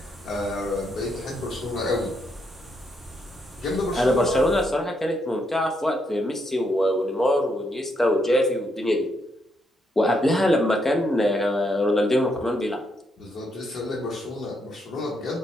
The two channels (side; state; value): both; normal; correlation 0.77